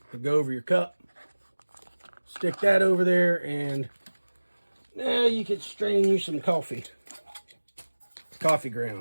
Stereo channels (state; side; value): inverted; both; correlation -1.00